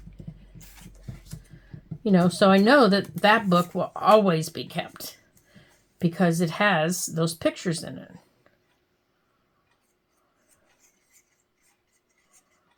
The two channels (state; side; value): identical; both; correlation 1.00